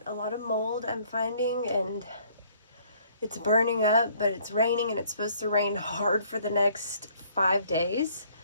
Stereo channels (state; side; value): inverted; both; correlation -0.61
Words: a lot of mold I'm finding, and it's burning up, but it's raining, and it's supposed to rain hard for the next 5 days.